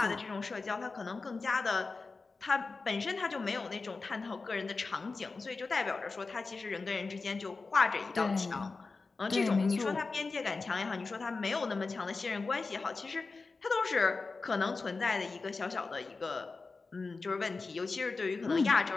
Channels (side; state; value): right; quieter; 4.0 dB